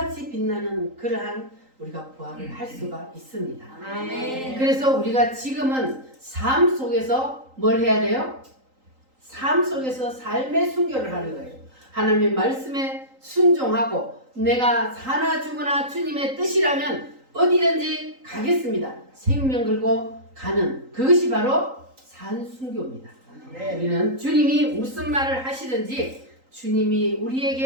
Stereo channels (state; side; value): late; left; 3.8 ms